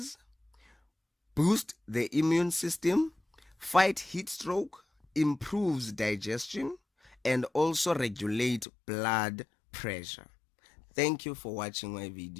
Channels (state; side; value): drops out; right; at 8.7 s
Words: boost the immune system, fight heat stroke, improves digestion, and also regulate blood pressure. Thank you for watching my